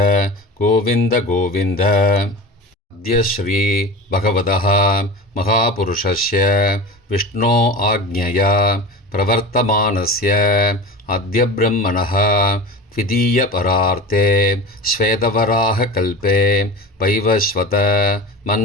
गोविन्द गोविन्द. अद्य श्री भगवतः महापुरुषस्य विष्णो आज्ञया प्रवर्तमानस्य अद्य ब्रह्मणः द्वितीयपरार्थे श्वेतवराहकल्पे वैवस्वत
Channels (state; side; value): normal; both; correlation 0.32